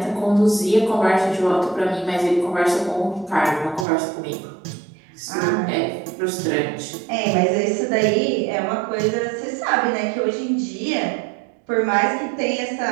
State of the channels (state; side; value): drops out; left; at 3.9 s